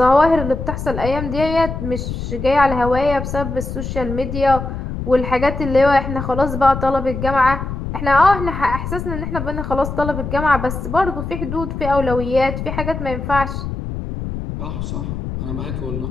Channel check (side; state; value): left; noise; rumble, 6 dB below the sound